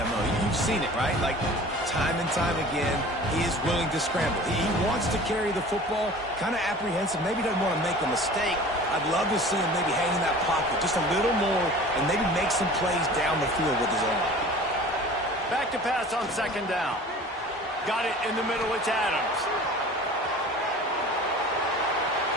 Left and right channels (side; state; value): both; normal; correlation 0.42